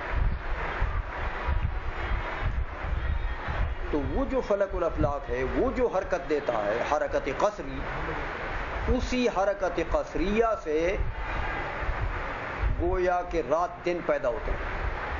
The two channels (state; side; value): identical; both; correlation 1.00